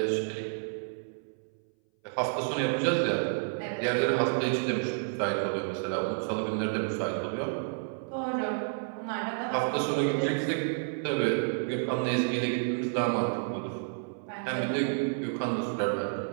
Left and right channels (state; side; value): silent; left; 58 dB below the other